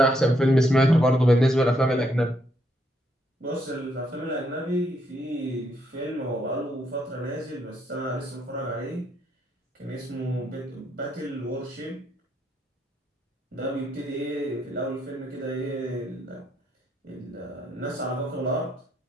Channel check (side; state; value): both; normal; correlation 0.74